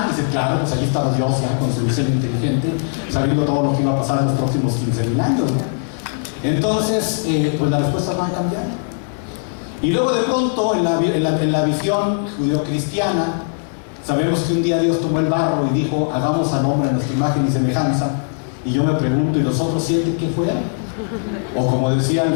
Y dice, claro, pues allí estaba Dios ya con su diseño inteligente, sabiendo todo lo que iba a pasar en los próximos 15,000 años, ¿no? Entonces, pues las respuestas van a cambiar. Y luego de pronto, en la visión judeocristiana, sabemos que un día Dios tomó el barro y dijo, hagamos al hombre a nuestra imagen y semejanza. Y yo me pregunto, ¿y los otros 7 qué fueron? O como decía al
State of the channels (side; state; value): right; silent; digital silence